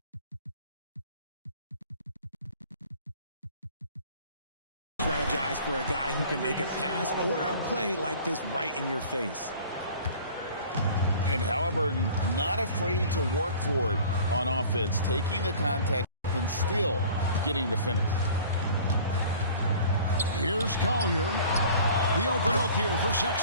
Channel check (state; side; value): inverted; both; correlation -0.47